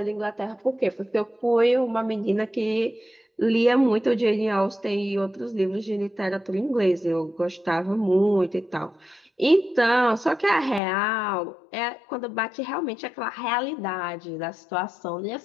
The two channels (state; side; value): drops out; right; at 10.8 s